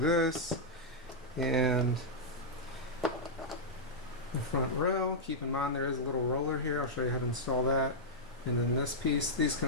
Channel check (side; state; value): both; normal; correlation -0.07